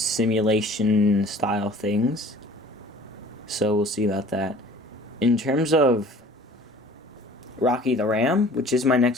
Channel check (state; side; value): normal; both; correlation 0.48